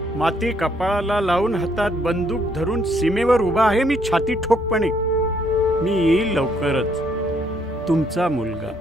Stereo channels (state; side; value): normal; both; correlation 0.69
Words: माती कपाळाला लावून हातात बंदूक धरून सीमेवर उभा आहे मी छाती ठोकपणे. मी येईल लवकरच. तुमचा मुलगा.